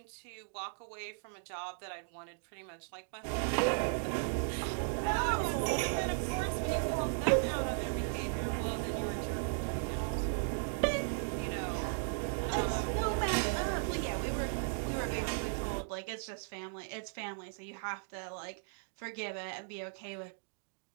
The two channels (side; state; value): left; silent; digital silence